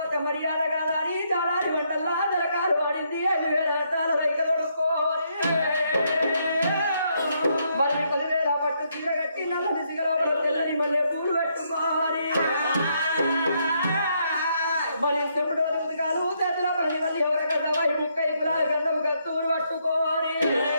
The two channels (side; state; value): both; inverted; correlation -0.74